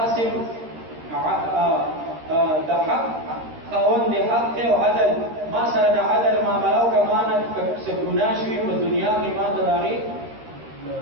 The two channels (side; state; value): left; late; 13 ms